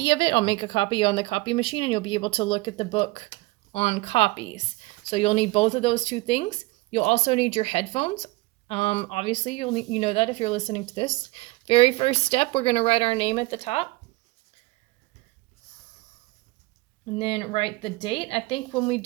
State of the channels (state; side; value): quieter; left; 21.9 dB